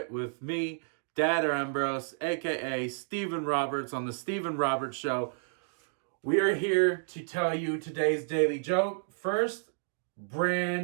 with me, Dad Ambrose, aka Stephen Roberts on the Stephen Roberts Show. We are here to tell you today's daily joke. First,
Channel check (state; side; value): silent; left; digital silence